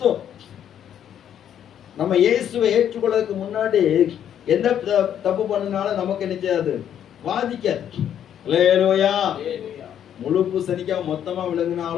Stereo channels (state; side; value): quieter; right; 9.7 dB